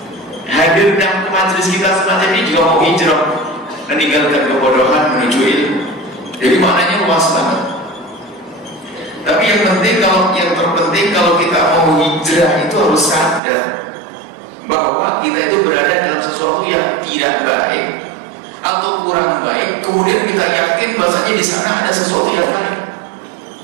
Hadir dalam majelis kita semacam ini juga mau hijrah, meninggalkan kebodohan menuju ilmu. Jadi maknanya luas banget. Tapi yang terpenting kalau kita mau hijrah itu harus sadar bahwa kita itu berada dalam sesuatu yang tidak baik atau kurang baik, kemudian kita yakin bahasanya di sana ada sesuatu yang baik.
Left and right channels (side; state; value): left; drops out; at 13.4 s